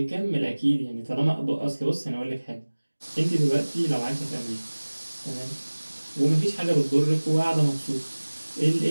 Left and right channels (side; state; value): both; inverted; correlation -1.00